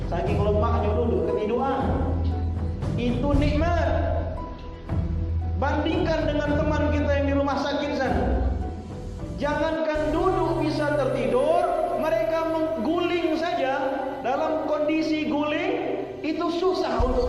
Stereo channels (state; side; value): identical; both; correlation 1.00